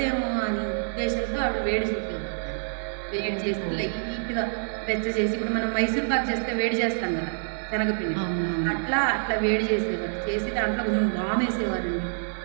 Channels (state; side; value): silent; left; digital silence